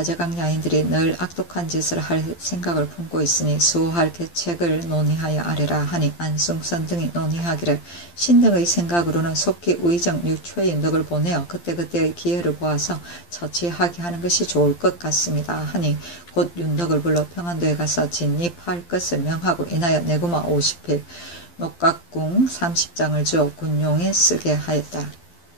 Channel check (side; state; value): right; late; 12 ms